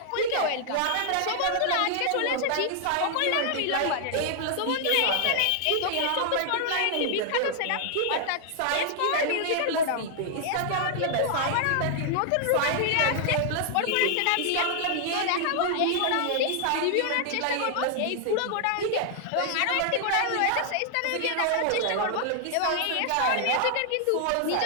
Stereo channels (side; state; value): both; different; correlation 0.00